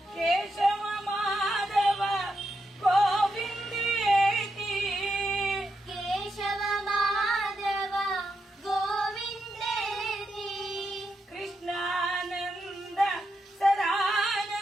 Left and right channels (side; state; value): both; normal; correlation 0.84